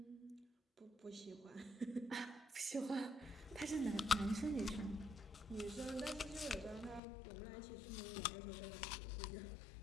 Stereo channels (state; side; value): drops out; right; at 7.0 s